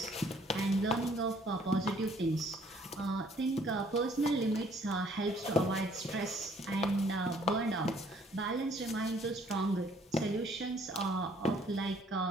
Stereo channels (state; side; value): normal; both; correlation 0.61